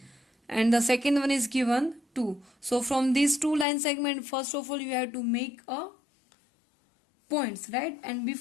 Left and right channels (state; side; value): drops out; right; at 3.7 s